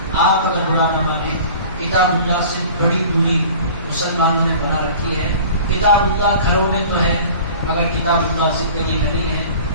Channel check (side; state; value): both; inverted; correlation -0.43